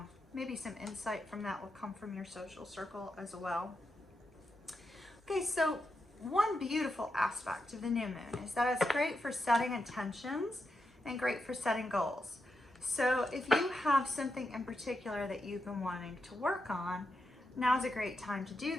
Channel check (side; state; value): both; normal; correlation 0.86